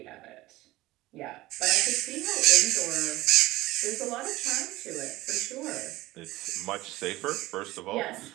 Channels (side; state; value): left; quieter; 18.2 dB